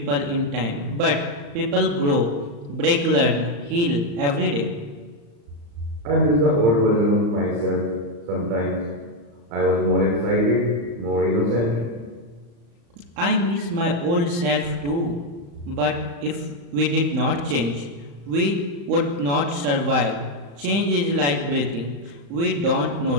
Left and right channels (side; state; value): left; late; 35 ms